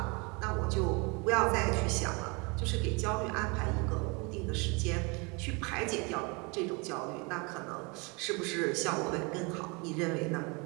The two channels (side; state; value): left; quieter; 29.9 dB